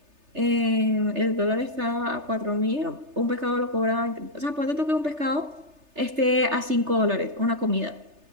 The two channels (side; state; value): left; late; 3.3 ms